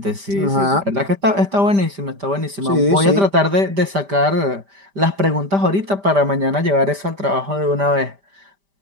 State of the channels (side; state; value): left; late; 5.1 ms